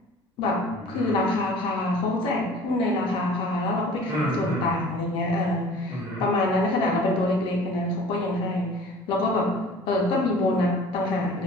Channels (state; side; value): normal; both; correlation 0.46